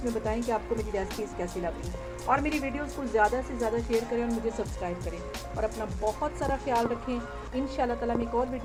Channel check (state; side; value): identical; both; correlation 1.00